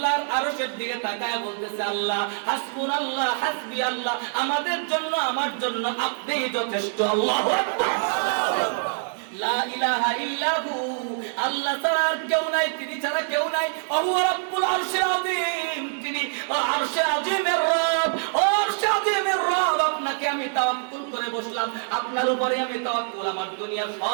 আরশের দিকে তাকায় বলতেছে, আল্লাহ হাসবুনাল্লাহ হাসবি আল্লাহ, আমাদের জন্য আমার জন্য আপনিই যথেষ্ট। আল্লাহু আকবার। লা ইলাহা ইল্লাহু, আল্লাহ ছাড়া আর কেউ নাই, তিনি ছাড়া কেউ নাই। ওহু রাব্বুল আরশিল আযীম, তিনি আরশে আযীমের রব। ও আরশে আযীমের রব, আপনাকে আমি তাওয়াক্কুল করে বসলাম, আপনার উপরে আমি তাওয়াক্কুল। আমার দুনিয়ার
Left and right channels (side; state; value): left; silent; digital silence